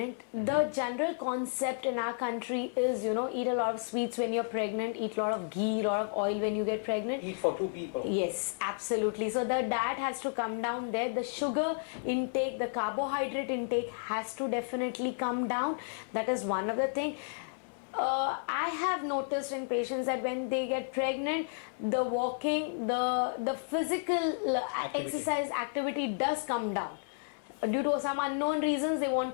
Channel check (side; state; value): right; silent; digital silence